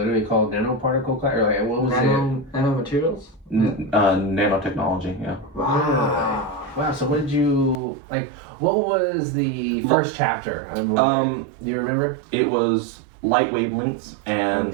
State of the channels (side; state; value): left; drops out; at 7.8 s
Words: called nanoparticle class, or like what was it? Nanomaterials? Nanotechnology, yeah. Wow. So what did you like? What was the first chapter? Do you remember? It was light wavelengths